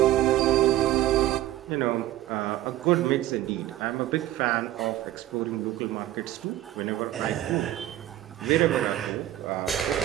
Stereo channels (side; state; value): left; quieter; 14.1 dB